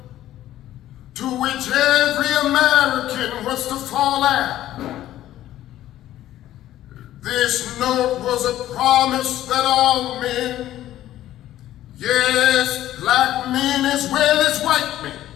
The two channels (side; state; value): right; quieter; 13.4 dB